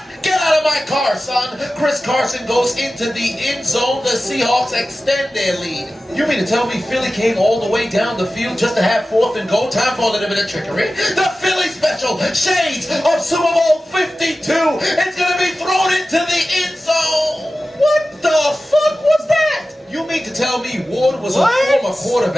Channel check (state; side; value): normal; both; correlation 0.95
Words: Get out of my car, son. Chris Carson goes into the end zone. The Seahawks extend their lead. You mean to tell me Philly came all the way down the field just to have 4th and goal? Time for a little bit of trickery. The Philly special, shades of Super Bowl 52. It's going to be thrown into the end zone. What the fuck was that? You mean to tell me Ward was a former